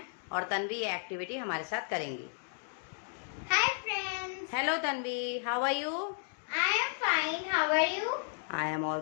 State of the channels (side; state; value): right; silent; digital silence